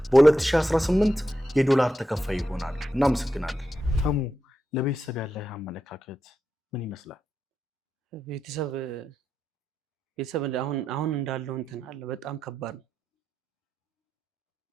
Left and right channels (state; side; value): normal; both; correlation 0.87